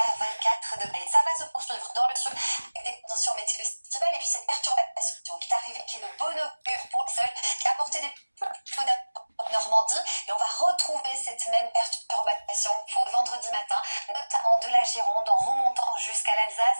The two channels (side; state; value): both; inverted; correlation -1.00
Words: 24 degrés. Ça va se poursuivre dans le sud avec des conditions météo estivales et puis cette perturbation qui est arrivée, qui est de bon augure pour le sol, qui a apporté des peu en Normandie. Et on va retrouver cette même perturbation pour le vendredi matin, notamment de la Gironde en remontant jusqu'à